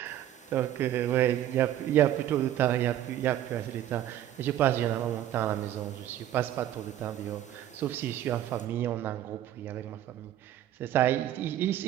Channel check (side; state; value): left; quieter; 12.0 dB